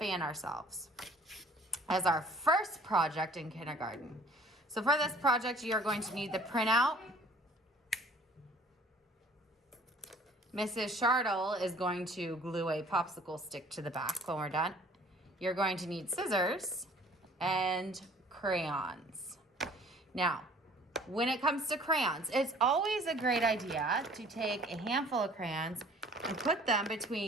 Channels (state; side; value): normal; both; correlation 0.53